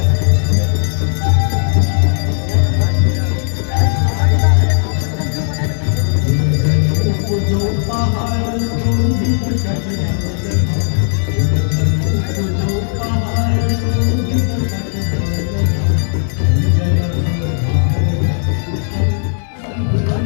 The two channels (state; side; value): silent; right; digital silence